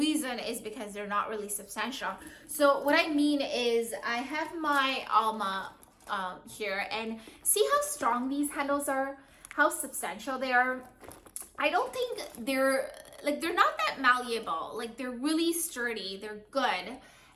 is because they're not really substantial. So what I mean is, I have my Alma here, and see how strong these handles are, how substantial they are. I don't think they're not that malleable. Like, they're really sturdy, they're good.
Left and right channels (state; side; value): identical; both; correlation 1.00